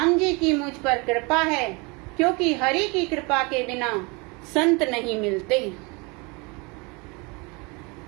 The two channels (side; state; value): left; quieter; 28.7 dB